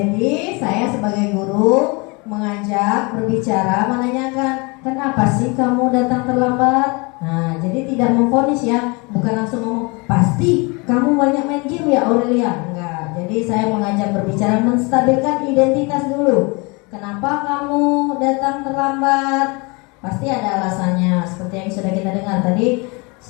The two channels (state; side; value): quieter; right; 28.7 dB